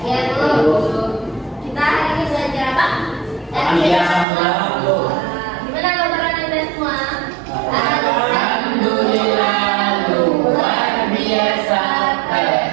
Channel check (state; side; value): drops out; left; at 4.2 s